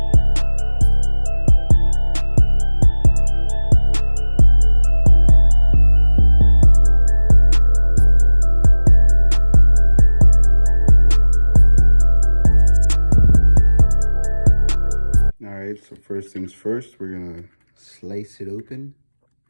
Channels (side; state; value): both; inverted; correlation -1.00